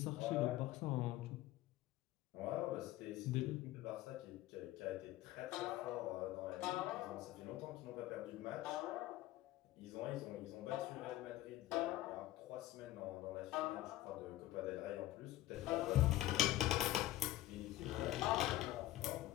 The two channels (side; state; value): right; quieter; 15.4 dB